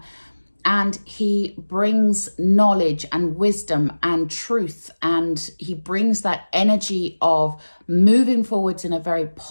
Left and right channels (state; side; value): inverted; both; correlation -1.00